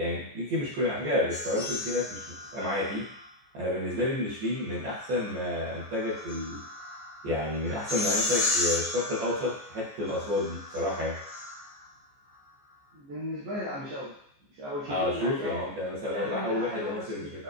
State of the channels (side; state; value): left; late; 14 ms